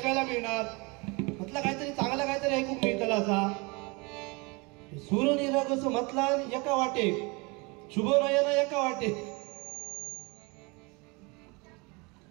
मिळणार, म्हटलं काहीतरी चांगलं काहीतरी ऐकून मिळतं असा सूर्यनिराग असं म्हटला एका वाटे शुभ नयन एका वाटे।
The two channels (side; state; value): left; quieter; 27.4 dB